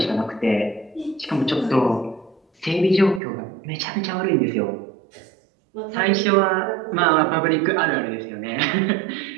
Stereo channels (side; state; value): left; drops out; at 3.2 s